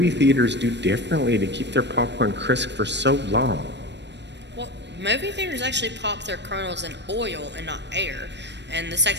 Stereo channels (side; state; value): left; late; 0.51 ms